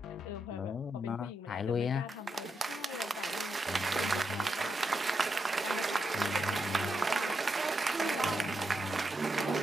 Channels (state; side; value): normal; both; correlation 0.84